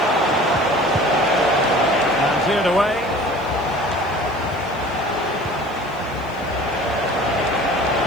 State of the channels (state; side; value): noise; left; hiss, 28 dB below the sound